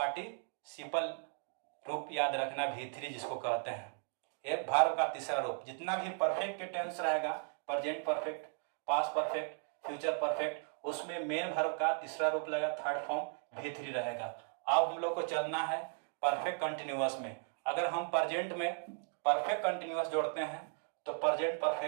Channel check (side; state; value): left; silent; 53 dB below the other